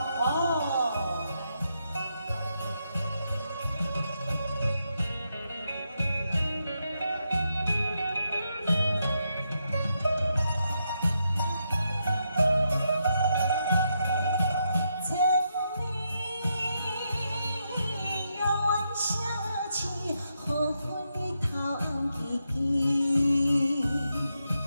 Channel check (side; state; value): both; inverted; correlation -0.82